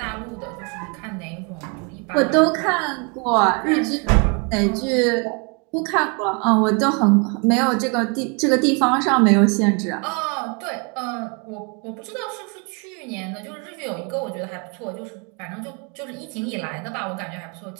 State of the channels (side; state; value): left; quieter; 33.9 dB